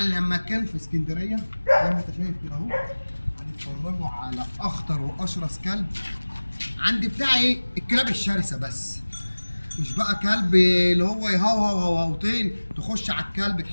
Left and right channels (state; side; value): inverted; both; correlation -1.00